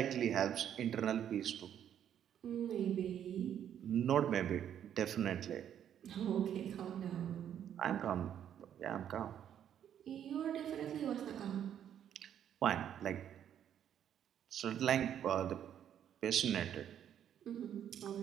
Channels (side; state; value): left; quieter; 9.7 dB